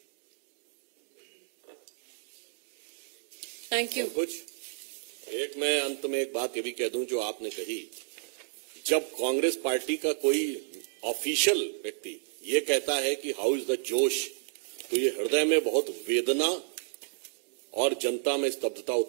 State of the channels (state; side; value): silent; left; digital silence